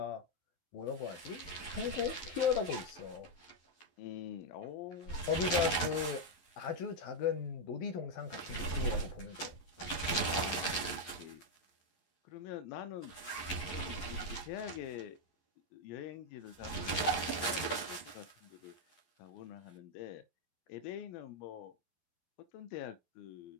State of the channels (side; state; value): right; late; 11 ms